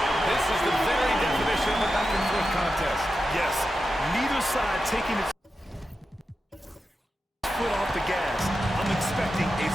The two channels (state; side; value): normal; both; correlation 0.90